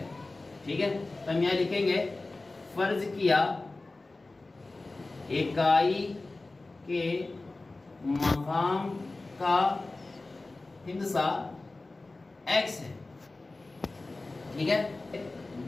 ठीक है। तो हम यहाँ लिखेंगे फर्ज किया इकाई के मकाम का हिंसा x है, ठीक है।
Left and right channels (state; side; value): quieter; right; 3.2 dB